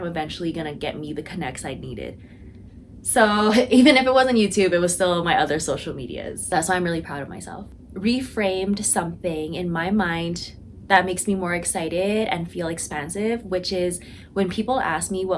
eventually going to get me the connects I needed. So even if it wasn't YouTube, it was still my other social medias. That's why I'm really proud of myself. Reframed something in my mind that makes me more excited and feel expansive, which is when people ask me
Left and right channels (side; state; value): both; identical; correlation 1.00